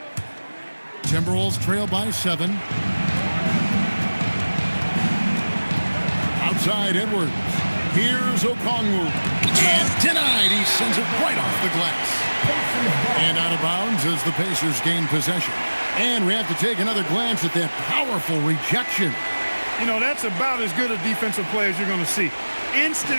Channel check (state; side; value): inverted; both; correlation -1.00